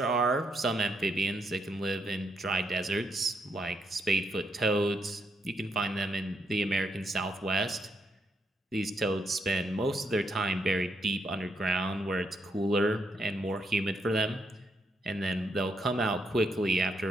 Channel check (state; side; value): normal; both; correlation 0.79